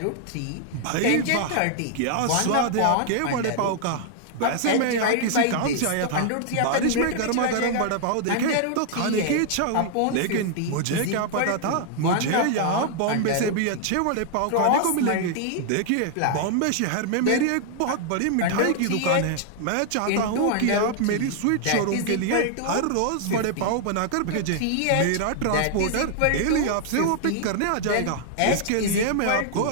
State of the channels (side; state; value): both; different; correlation 0.00